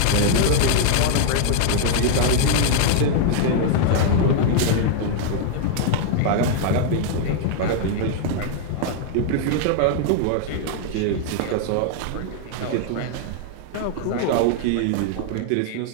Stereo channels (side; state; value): both; different; correlation 0.00